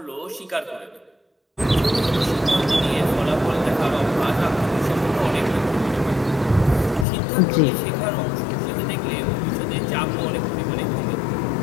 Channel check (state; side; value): drops out; right; at 7.1 s